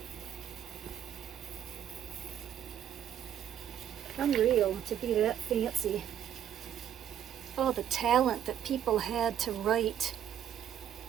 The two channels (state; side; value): quieter; left; 10.0 dB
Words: Unreal to be that fancy. Oh, the talent that people had to write.